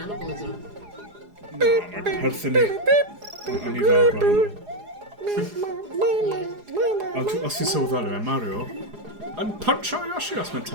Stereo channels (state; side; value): late; left; 4.8 ms